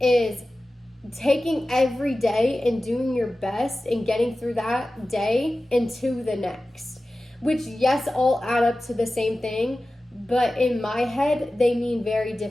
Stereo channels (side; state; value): both; normal; correlation 0.95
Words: taking every day and doing your best and getting through that day into the next. Which, yes, all add up to the same thing, but in my head, they mean very